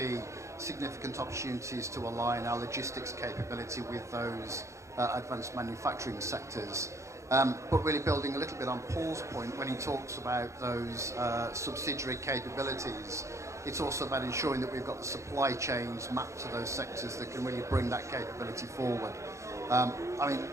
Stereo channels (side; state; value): left; late; 0.14 ms